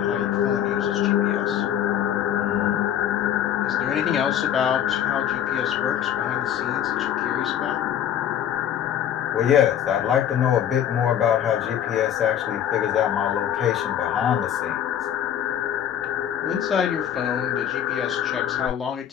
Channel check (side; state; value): right; quieter; 9.9 dB